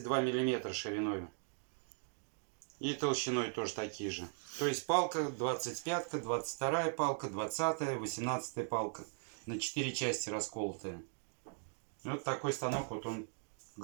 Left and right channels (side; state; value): left; silent; 52 dB below the other